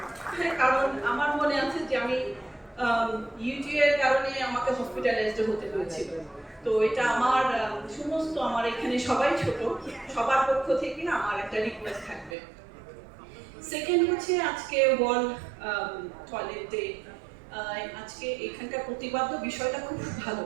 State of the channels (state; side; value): drops out; left; at 12.4 s